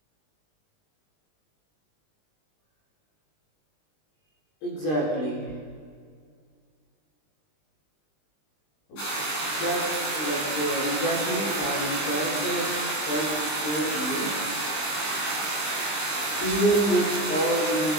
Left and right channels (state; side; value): late; right; 20 ms